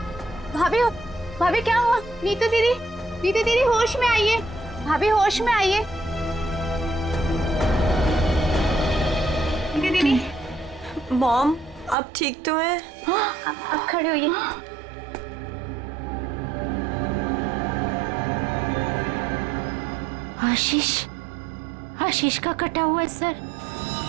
भाभी, भाभी क्या हुआ? नीतू दीदी, नीतू दीदी होश में आइए। भाभी होश में आइए। नीतू दीदी, मॉम आप ठीक तो हैं? अब खड़े होइए। आशीष, आशीष का कटा हुआ है सर।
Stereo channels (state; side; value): drops out; left; at 12.0 s